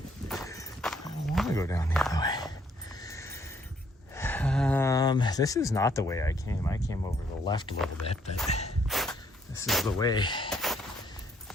This is not the way I came. I came over the left a little bit, but this is the way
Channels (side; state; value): both; normal; correlation 0.67